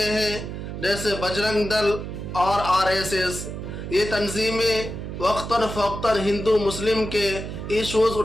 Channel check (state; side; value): noise; right; hum, 7 dB below the sound